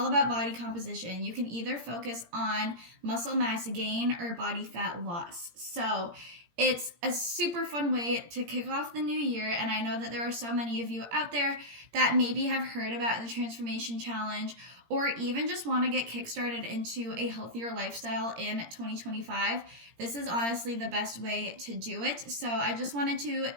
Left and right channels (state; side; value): late; left; 17 ms